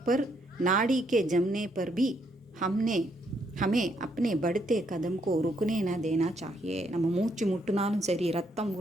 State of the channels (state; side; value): normal; both; correlation 0.73